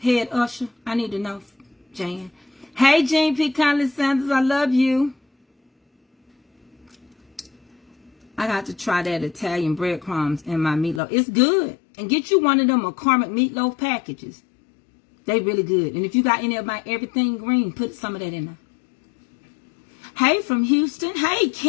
usher? I need to know, Jan. Hey, Jean P. Conley Sanders, I love you. I got to try that Italian breadcrumbs in my meatloaf. It's good. And get you one of them McCormick meatloaf packages. They really good. And if you got any of my everything green, put some of that in there. Hey, from Houston. Hey,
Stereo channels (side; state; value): right; drops out; at 11.0 s